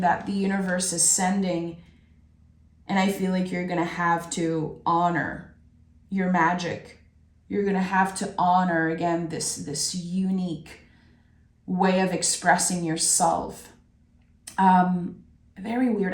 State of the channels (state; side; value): identical; both; correlation 1.00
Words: that the universe is sending, and I feel like you're going to have to honor your magic. You're going to have to honor, again, this unique way of expressing yourself. Very weird.